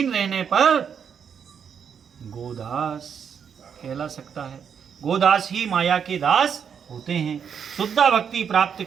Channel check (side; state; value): left; quieter; 7.4 dB